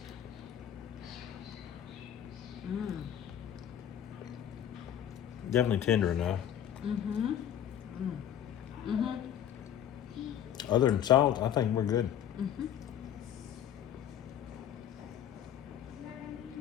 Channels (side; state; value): right; quieter; 10.0 dB